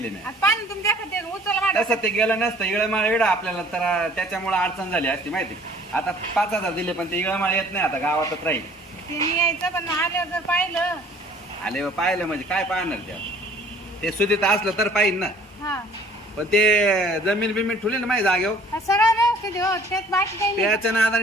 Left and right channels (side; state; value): both; normal; correlation 0.53